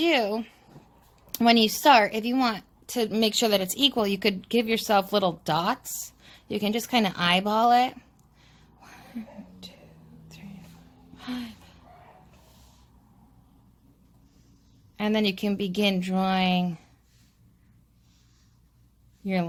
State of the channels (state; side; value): identical; both; correlation 1.00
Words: when you start, if you want to make sure that it's equal, you could give yourself little dots. You can just kind of eyeball it. 1, 2, 3, 4, 5. And then you can begin drawing your